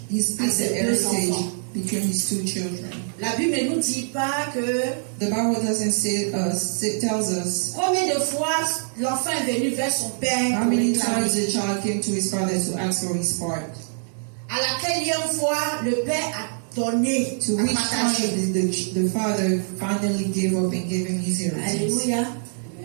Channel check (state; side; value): silent; left; digital silence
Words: He à split the ses deux heritage enfants. between his two children. La Bible ne nous dit pas que The Bible doesn't say, it tells us combien de fois l'enfant est venu vers son père how pour many réclamer. times the child came to his father to ask for his part. À laquelle fois le Père a donné, To a which partagé. time the father finally gave up and gave him his heritage. Alléluia.